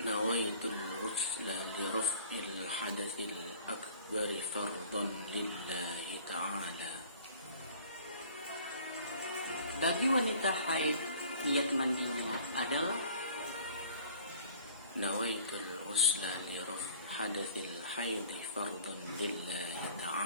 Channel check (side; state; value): both; inverted; correlation -0.51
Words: الغسل لرفع الحدث الأكبر فرضا لله تعالى. Bagi wanita haid, niat mandinya adalah نويت الغسل لرفع حدث الحيض فرضا لله